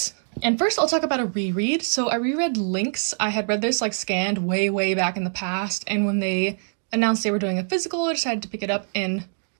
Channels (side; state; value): left; silent; digital silence